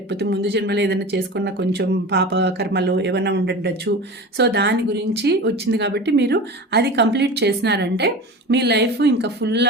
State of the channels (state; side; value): normal; both; correlation 0.32